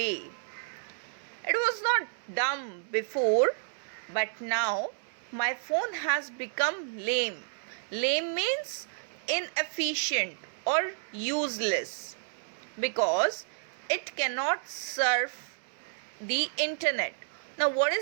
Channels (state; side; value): silent; left; digital silence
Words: It was not dumb before, but now my phone has become lame. Lame means inefficient or useless because it cannot surf the internet. Now, what